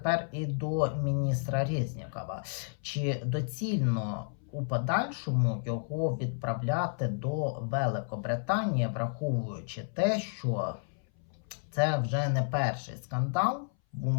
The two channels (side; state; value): right; silent; 57 dB below the other